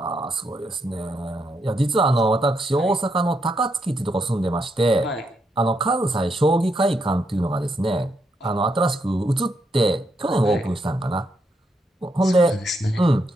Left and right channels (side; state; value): both; normal; correlation 0.79